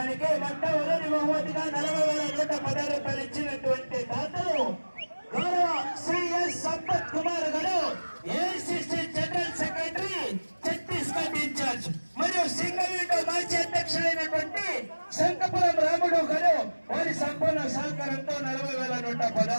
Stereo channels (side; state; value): both; inverted; correlation -1.00